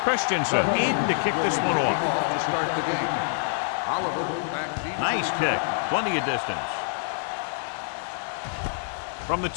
Christensen in to kick this one off. Nice kick. Plenty of distance. From the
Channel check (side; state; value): right; silent; 61 dB below the other